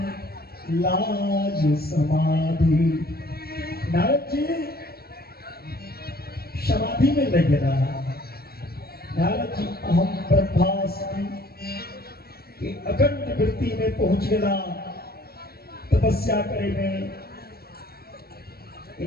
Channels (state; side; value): late; right; 0.45 ms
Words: लाज समाधि। नारद जी समाधि में लग रहा। नारद जी अहम ब्रह्मास्मि कि अखंड वृत्ति में पहुंच गया तपस्या करे में।